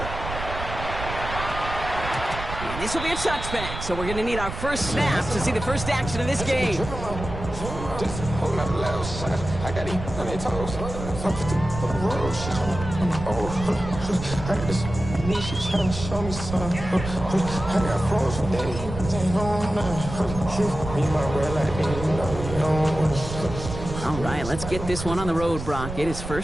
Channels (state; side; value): noise; right; rumble, 8 dB below the sound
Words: And this will be a touchback, so we're going to need our first snap to see the first action of this game. All right, let's get this one on the road, Brock. It is